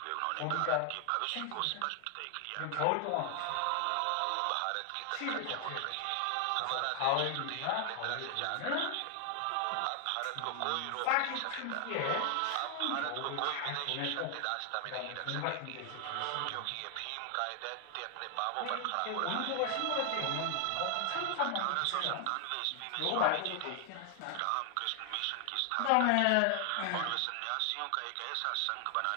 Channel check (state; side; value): different; both; correlation 0.00